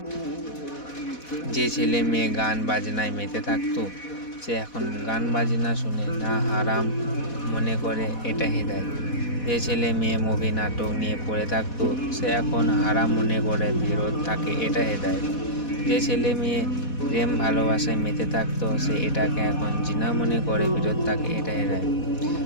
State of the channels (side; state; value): right; late; 4.1 ms